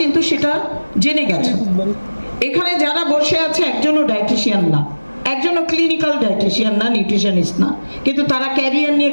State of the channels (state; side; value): inverted; both; correlation -1.00